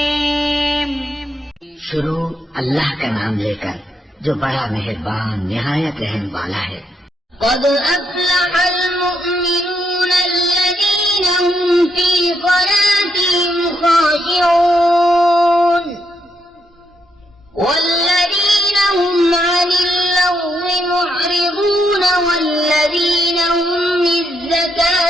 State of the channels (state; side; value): normal; both; correlation 0.78